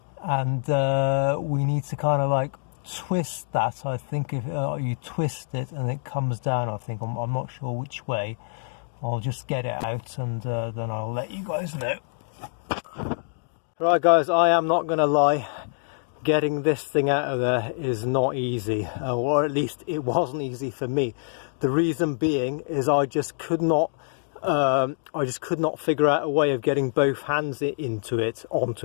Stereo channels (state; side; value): silent; right; digital silence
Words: and we need to kind of like twist that, I think if you twist it and it comes down, I think, I'm not sure which way. I'll just get it out and then I'll let you guys know. Right guys, I am not going to lie, getting this thing out of there is not easy, or at least it wasn't easy for me. The reason being is I just could not figure out a way of getting both hands onto it,